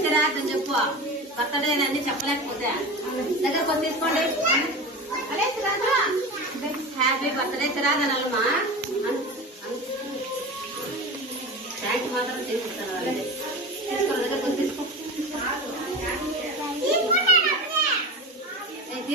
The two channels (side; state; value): both; normal; correlation 0.29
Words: సిరాజ్ అని చెప్పు. బర్త్డే అన్ని చెప్పలేకపోతే దగ్గర కొంత తీసుకోండి. అదే సిరాజు హ్యాపీ బర్త్డే సిరాజ్ అనాలమ్మా. థ్యాంక్స్ మాత్రం తీసుకుంటాను. అలాగే తీసుకో, దగ్గర కొంత తీసుకో.